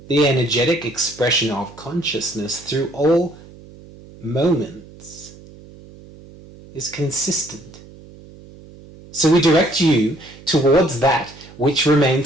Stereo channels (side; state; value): right; noise; hum, 21 dB below the sound